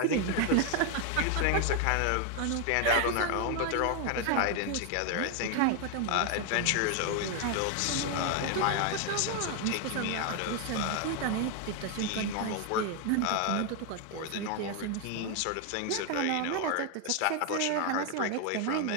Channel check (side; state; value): both; different; correlation 0.01